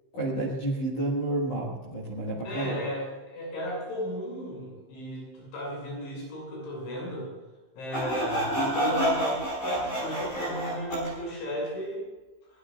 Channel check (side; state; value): right; late; 15 ms